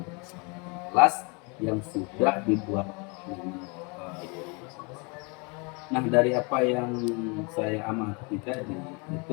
kelas yang sudah dibuat. Nah, dari apa yang saya amati tadi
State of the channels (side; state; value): right; quieter; 31.3 dB